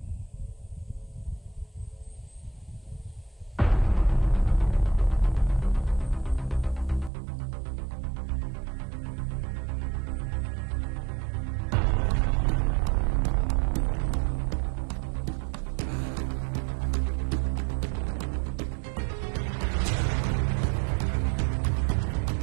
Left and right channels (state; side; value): drops out; left; at 7.1 s